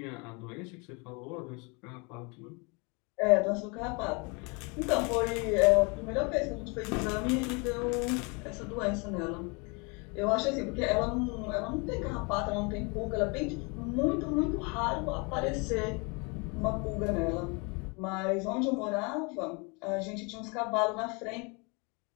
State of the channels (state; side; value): quieter; right; 31.1 dB